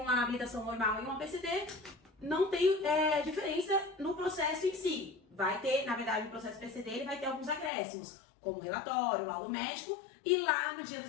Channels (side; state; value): right; drops out; at 7.7 s